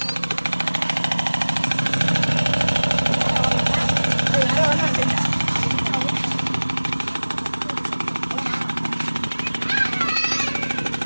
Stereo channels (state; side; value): inverted; both; correlation -1.00